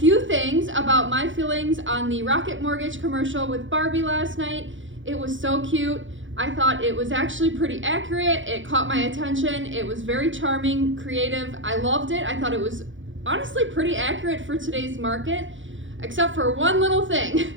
things about my feelings on the Rocket Mortgage commercial with Barbie last night. It was so cute. I thought it was actually pretty accurate. It caught my attention. It was very charming, creative. I loved it. I thought it was honestly pretty accurate for today's market, except for one little thing,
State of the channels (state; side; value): late; left; 0.56 ms